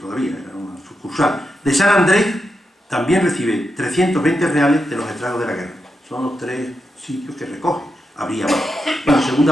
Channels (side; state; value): both; normal; correlation 0.86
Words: todavía, era una sucursal, de San Andrés también recibe 320 reales de los estragos de la guerra. Son los 3 sitios que recoge. Habría más. Bueno, la